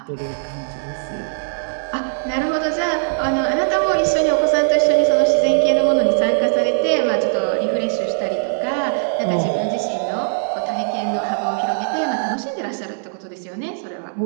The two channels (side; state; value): left; silent; digital silence